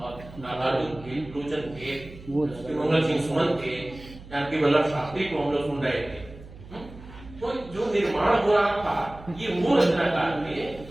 नागार्जुन थे, लोचन थे, मंगल सिंह सुमन थे, जानकी वल्लभ शास्त्री को हम लोग सुन रहे थे। तो जो निर्माण हो रहा था ये वो रचनाकार थे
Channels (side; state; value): right; noise; hum, 17 dB below the sound